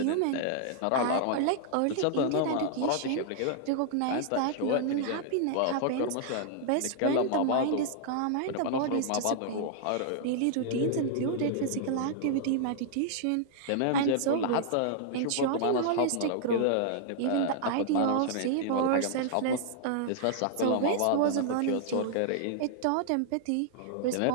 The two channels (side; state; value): both; different; correlation -0.01